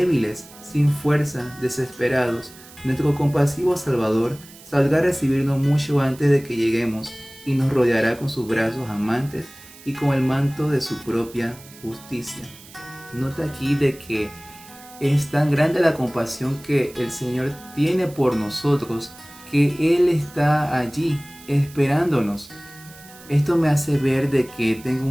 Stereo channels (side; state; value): right; noise; hiss, 21 dB below the sound